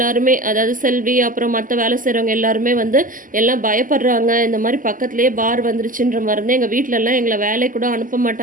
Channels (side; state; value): left; late; 0.39 ms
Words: அதாவது செல்வி, அப்புறம் மத்த வேலை செய்றவங்க எல்லாருமே வந்து எல்லாம் பயப்படுறாங்க. இந்த மாரி பக்கத்திலேயே பார் வந்துருச்சுன்ற மருந்து எங்க வீட்லலாம் எங்கள வேலைக்கு கூட அனுப்ப அனுப்ப